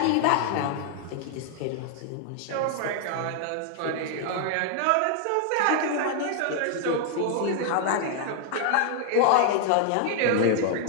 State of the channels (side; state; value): both; different; correlation 0.00